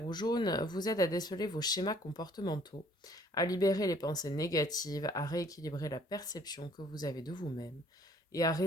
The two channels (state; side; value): normal; both; correlation 0.59